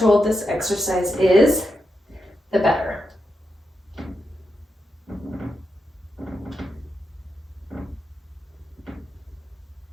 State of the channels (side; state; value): both; normal; correlation 0.86